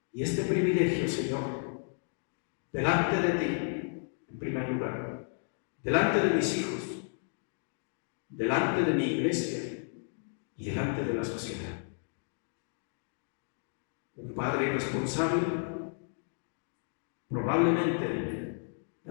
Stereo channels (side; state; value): right; silent; digital silence